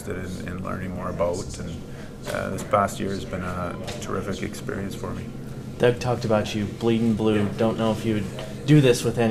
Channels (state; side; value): identical; both; correlation 1.00